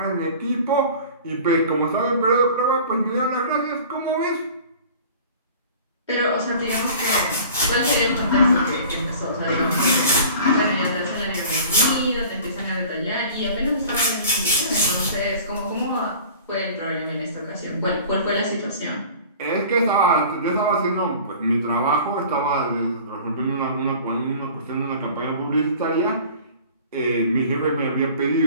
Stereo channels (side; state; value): both; inverted; correlation -0.44